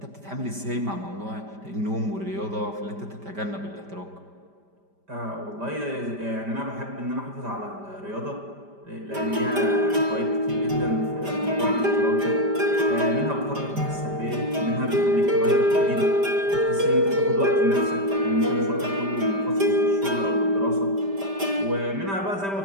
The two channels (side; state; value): left; late; 5.1 ms